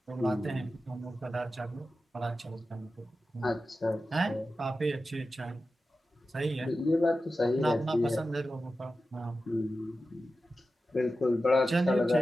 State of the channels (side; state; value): both; normal; correlation 0.93